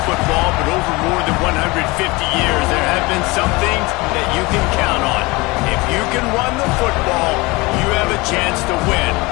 football, but over more than 150 years, there have been some things that you can count on. If you can run the football, you have a chance to win.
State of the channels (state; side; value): quieter; right; 23.8 dB